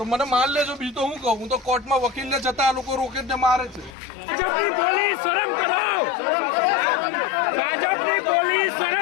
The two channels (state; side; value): drops out; right; at 4.0 s